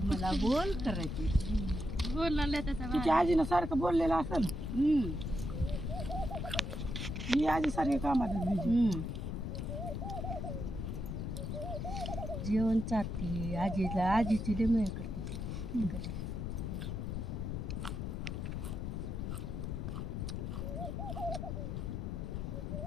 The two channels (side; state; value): left; noise; rumble, 3 dB below the sound